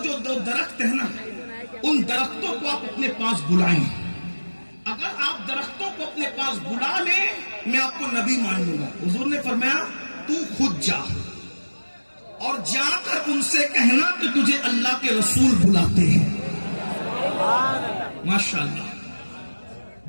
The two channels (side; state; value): both; inverted; correlation -1.00